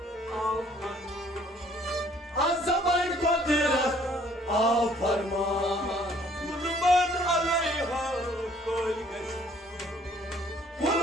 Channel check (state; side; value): normal; both; correlation 0.60